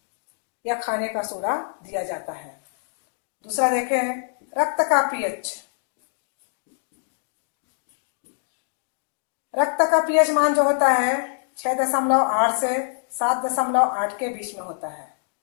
या खाने का सोडा दिया जाता है। दूसरा देखें रक्त का पीएच। रक्त का पीएच मान जो होता है 6.8 से 7.8 के बीच में होता है।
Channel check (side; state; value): right; silent; digital silence